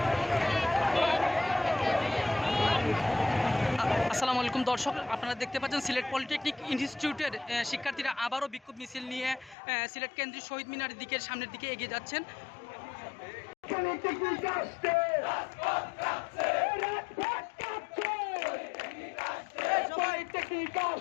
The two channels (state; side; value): drops out; right; at 9.6 s